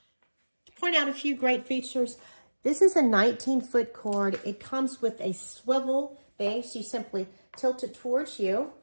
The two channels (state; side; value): inverted; both; correlation -1.00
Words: To point out a few great features, this is a 19-foot cord. It comes with a swivel base. You simply tilt it towards you,